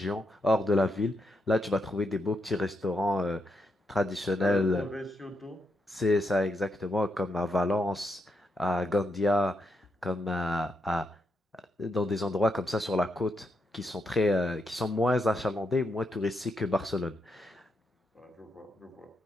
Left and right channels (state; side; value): normal; both; correlation 0.81